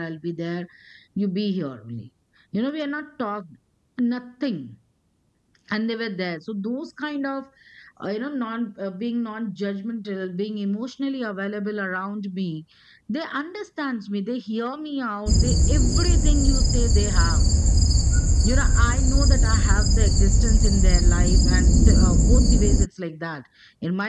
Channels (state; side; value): identical; both; correlation 1.00